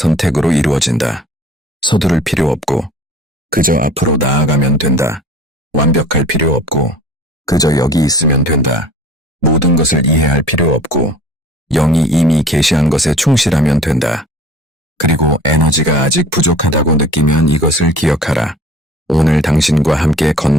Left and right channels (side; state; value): both; normal; correlation 0.47